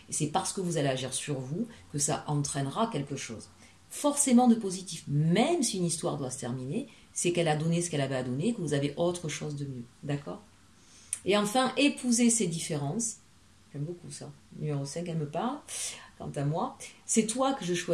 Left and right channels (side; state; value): both; identical; correlation 1.00